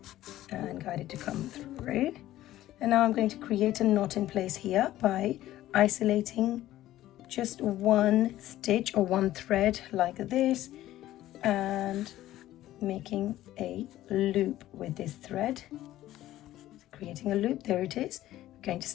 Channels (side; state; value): right; quieter; 14.3 dB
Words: and guide it to come through. And now I'm going to create a knot in place here by isolating just one stitch or one thread like this and making a loop with this thread. Creating a loop, there it is. We're going to